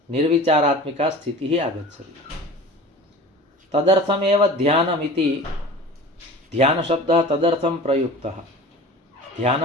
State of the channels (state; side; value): normal; both; correlation 0.39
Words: निर्विचारात्मिका स्थितिः आगच्छति। तदर्थमेव ध्यानमिति ध्यानशब्दः तदर्थं प्रयुक्तः।